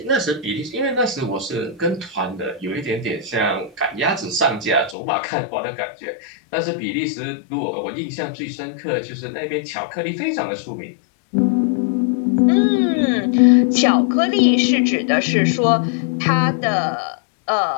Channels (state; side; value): drops out; right; at 5.0 s